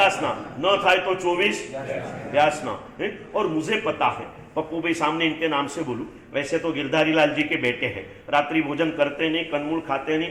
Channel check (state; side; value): identical; both; correlation 1.00